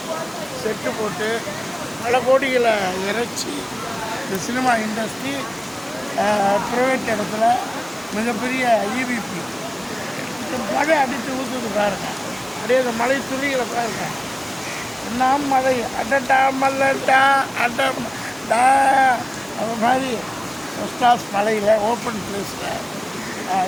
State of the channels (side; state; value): right; noise; hiss, 23 dB below the sound